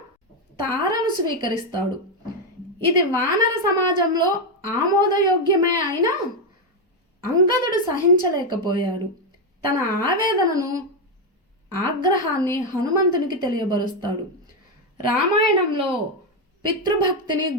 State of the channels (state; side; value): normal; both; correlation 0.05